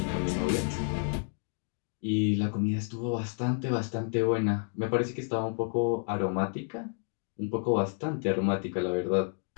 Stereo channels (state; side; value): silent; right; 56 dB below the other